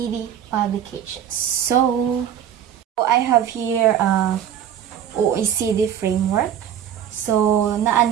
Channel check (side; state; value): left; quieter; 9.6 dB